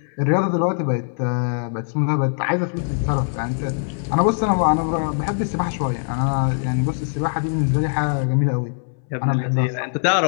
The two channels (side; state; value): right; silent; 64 dB below the other